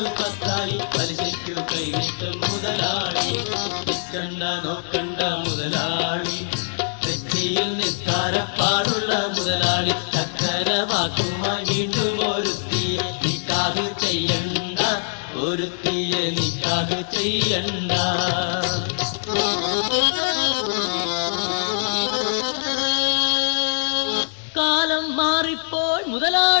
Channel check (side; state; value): right; silent; digital silence